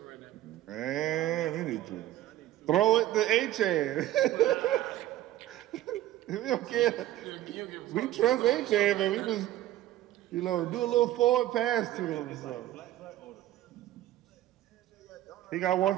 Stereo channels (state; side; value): quieter; left; 14.1 dB